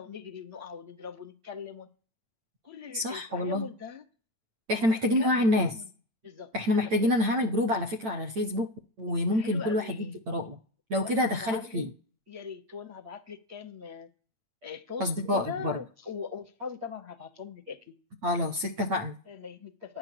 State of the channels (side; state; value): left; late; 8.9 ms